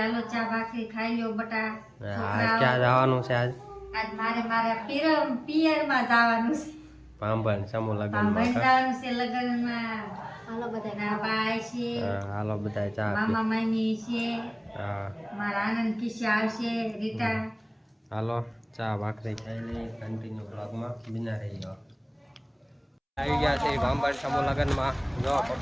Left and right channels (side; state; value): both; identical; correlation 1.00